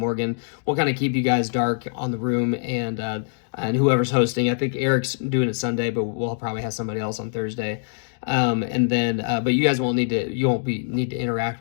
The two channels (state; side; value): silent; right; digital silence